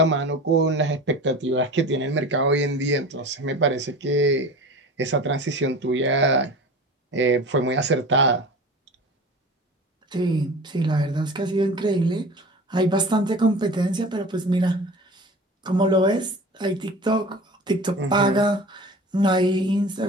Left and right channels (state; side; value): normal; both; correlation 0.37